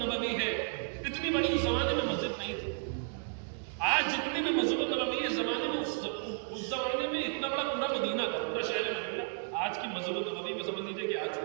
ہے اتنی بڑی اس زمانے میں مسجد نہیں تھی۔ آج جتنی بھی مسجد النبوی ہے زمانے میں اس زمانے میں اتنا بڑا پورا مدینہ تھا، پورا شہر مدینہ آج کی مسجد النبوی میں سمجھ لیجیے کہ آج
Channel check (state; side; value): silent; left; 56 dB below the other